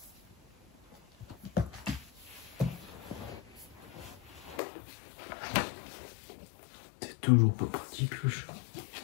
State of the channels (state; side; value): drops out; right; at 4.6 s